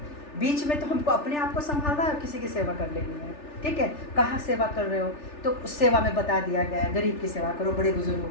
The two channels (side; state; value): right; late; 3.4 ms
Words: बीच में तो हमको अपने आप को संभालना है और किसी की सेवा कर लेनी है। ठीक है, कहाँ सेवा कर रहे हो तो उस सेवा में बता दिया गया है, गरीब की सेवा करो, बड़े बुजुर्गों